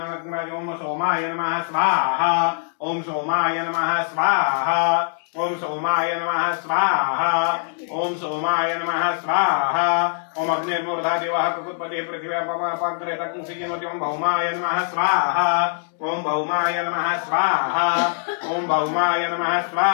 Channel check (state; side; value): silent; right; digital silence